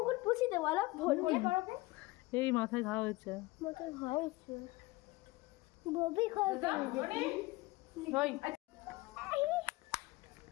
এই মাথায় ঘা হয়েছে।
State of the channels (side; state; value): right; quieter; 21.1 dB